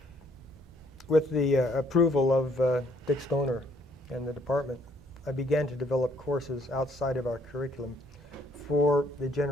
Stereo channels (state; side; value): normal; both; correlation 0.65